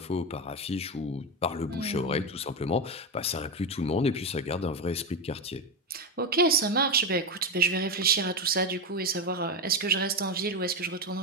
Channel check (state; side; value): normal; both; correlation 0.13